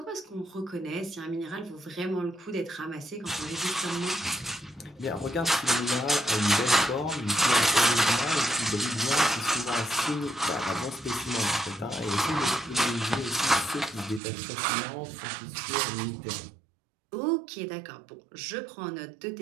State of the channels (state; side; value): drops out; left; at 14.2 s